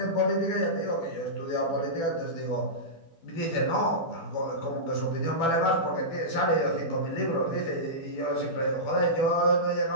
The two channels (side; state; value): right; late; 12 ms